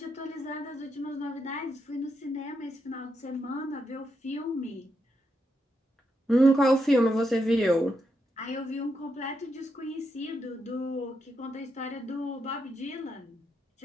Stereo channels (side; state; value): both; normal; correlation 0.82